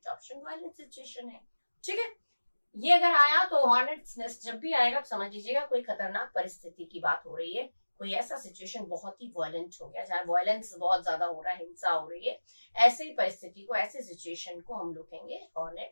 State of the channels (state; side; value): inverted; both; correlation -1.00